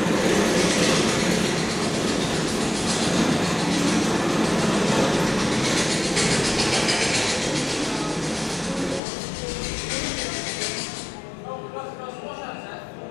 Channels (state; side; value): drops out; right; at 9.0 s